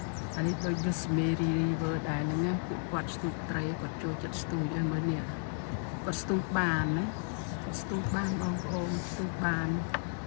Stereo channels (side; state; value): right; silent; 56 dB below the other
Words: អានេះដូច Rosemary river ដែរហ្នឹងណាពួកគាត់ស្ទូចត្រីគាត់ចូលចិត្តស្ទូចឲ្យមើលនេះគាត់ស្ទូចបានណាគាត់ស្ទូចបានបងប្អូនស្ទូចបាន